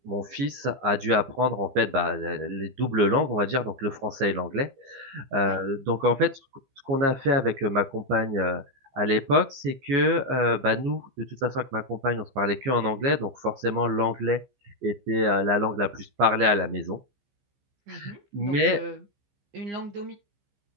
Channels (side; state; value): left; late; 15 ms